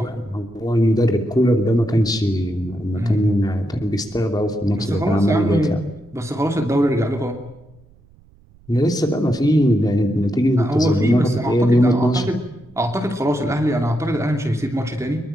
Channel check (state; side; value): noise; right; rumble, 28 dB below the sound